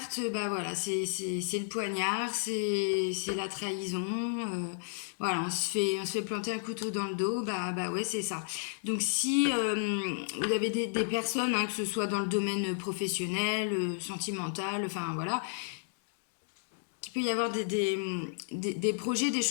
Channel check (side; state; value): right; silent; digital silence